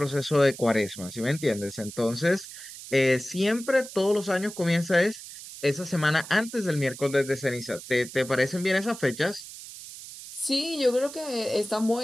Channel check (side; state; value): right; noise; hiss, 13 dB below the sound